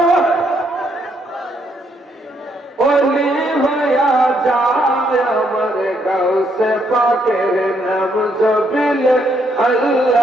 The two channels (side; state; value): both; normal; correlation 0.73